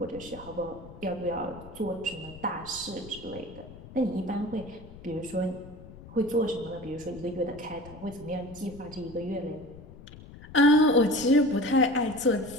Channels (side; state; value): left; noise; rumble, 17 dB below the sound